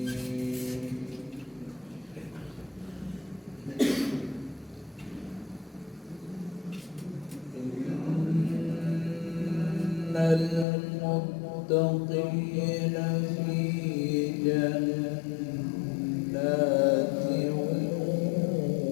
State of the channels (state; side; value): drops out; right; at 10.7 s